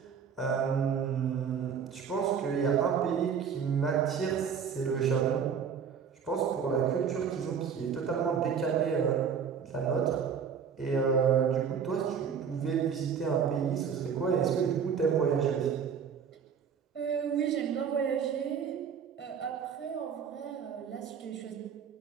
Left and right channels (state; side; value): quieter; left; 7.0 dB